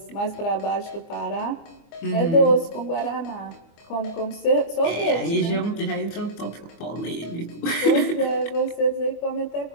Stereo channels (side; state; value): right; late; 24 ms